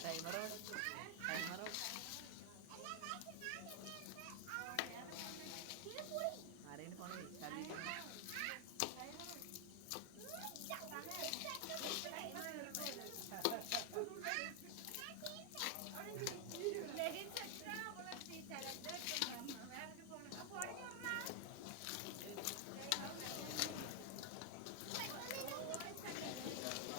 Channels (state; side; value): different; both; correlation 0.00